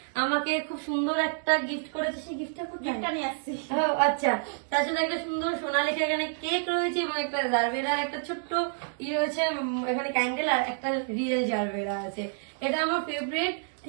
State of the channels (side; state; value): left; silent; digital silence